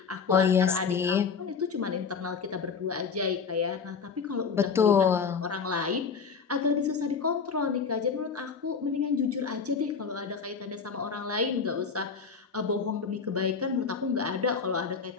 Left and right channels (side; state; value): right; quieter; 5.7 dB